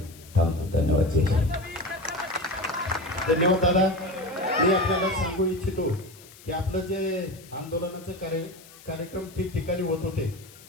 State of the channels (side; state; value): left; noise; hiss, 21 dB below the sound